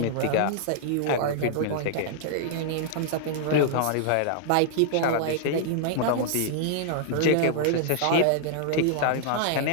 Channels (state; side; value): different; both; correlation -0.01